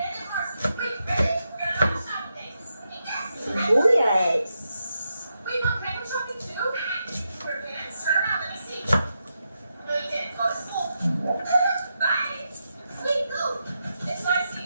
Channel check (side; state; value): both; inverted; correlation -0.85